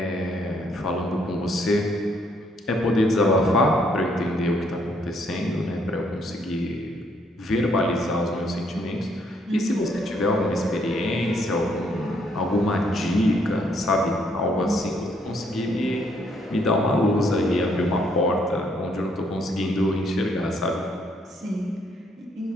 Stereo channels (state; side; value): normal; both; correlation 0.70